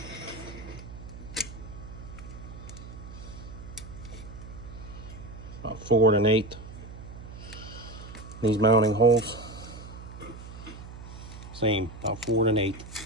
About 4 1/8. These mounting holes. Same, about 4 1/8.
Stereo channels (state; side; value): noise; right; hum, 13 dB below the sound